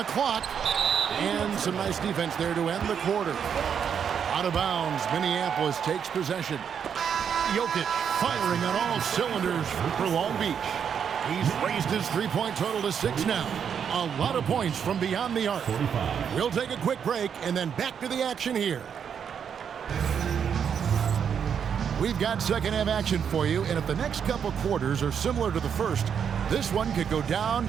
clock. And some nice defense there to end the quarter. Out of bounds, Minneapolis takes possession. Jokic firing on all cylinders for Long Beach. He's raised his three-point total to 6 now. A lot of points from beyond the arc. We'll take a quick break and then back to the action here. We've got second half action for you, and if the next couple quarters are similar to the first, this one could go down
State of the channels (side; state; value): left; quieter; 7.6 dB